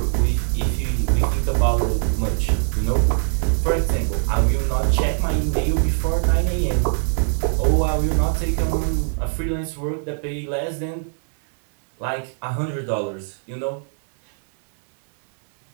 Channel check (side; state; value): left; silent; 63 dB below the other